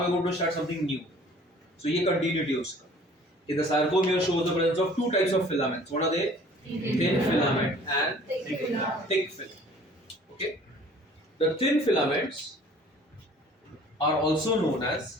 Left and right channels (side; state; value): both; normal; correlation 0.51